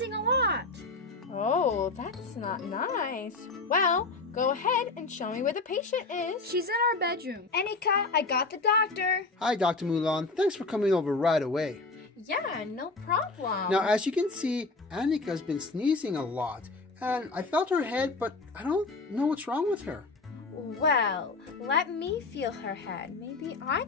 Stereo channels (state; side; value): quieter; right; 3.6 dB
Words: a lot. Oh, that's not nice. Well, go ahead and show me where the patient is. She's in our bedroom. Annika, I got the doctor. Hi, Dr. Mulan. Thanks for coming over right away. Yeah, no problem. Now, as you can see, Annika's been sneezing a lot. And I felt her head, but I don't know what's wrong with her. Well, let me feel her head. Maybe I